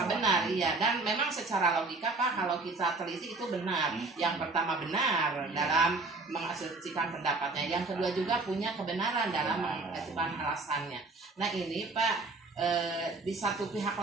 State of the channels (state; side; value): quieter; left; 3.5 dB